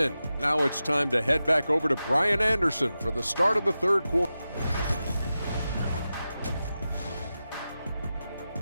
Now it's time to head back over to Brian Anderson for the start of the third quarter.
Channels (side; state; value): both; inverted; correlation -0.92